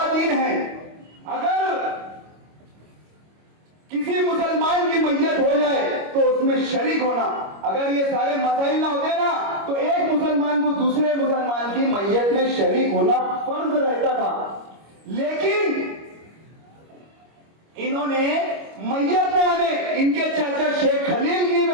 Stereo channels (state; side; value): late; left; 25 ms